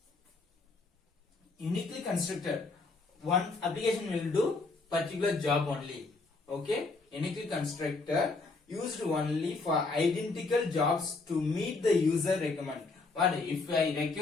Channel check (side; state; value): right; quieter; 3.7 dB